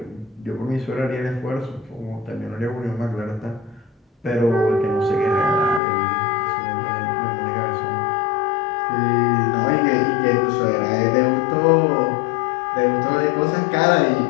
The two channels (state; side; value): drops out; right; at 5.8 s